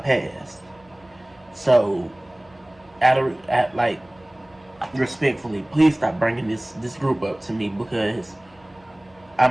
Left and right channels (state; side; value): noise; right; hum, 30 dB below the sound